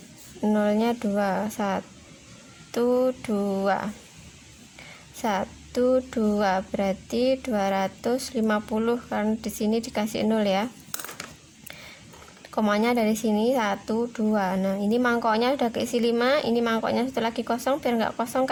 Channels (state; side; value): identical; both; correlation 1.00